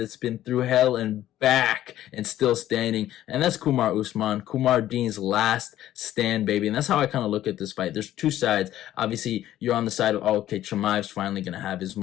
been through hell and back and still standing. And that's Kamaru Usman, Kumar Dean's last stand, baby. And that's how I kind of look at this fight. There's two sides. Obviously, you're on the side of, oh, okay, Chimaev's finally going to have his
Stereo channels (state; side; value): quieter; right; 13.1 dB